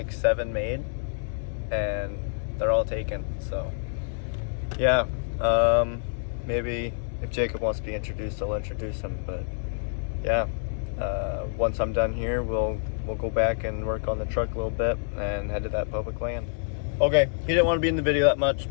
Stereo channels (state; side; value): silent; right; digital silence